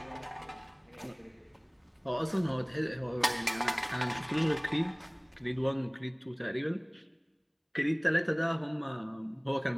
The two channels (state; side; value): identical; both; correlation 1.00